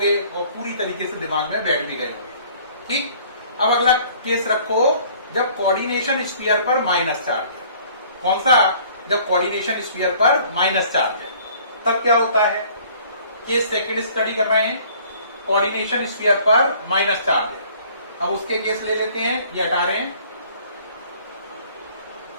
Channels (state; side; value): inverted; both; correlation -0.55